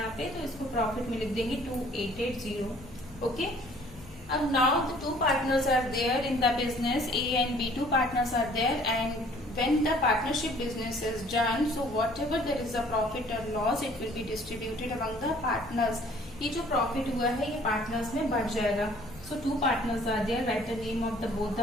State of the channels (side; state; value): left; noise; rumble, 20 dB below the sound